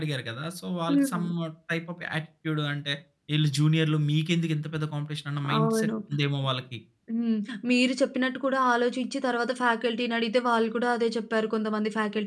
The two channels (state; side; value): identical; both; correlation 1.00